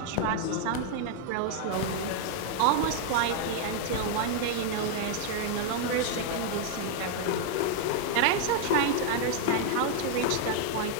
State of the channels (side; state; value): both; different; correlation 0.00